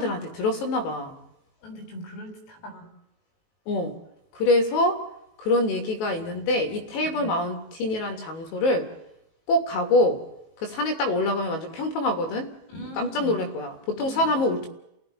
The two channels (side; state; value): right; late; 19 ms